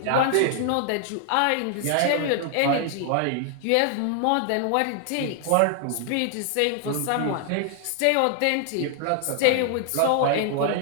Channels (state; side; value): different; both; correlation 0.00